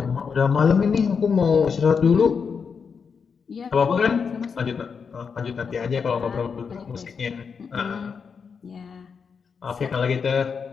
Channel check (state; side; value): quieter; right; 6.0 dB